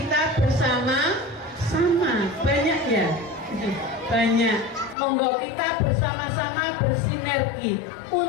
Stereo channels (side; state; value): right; drops out; at 5.0 s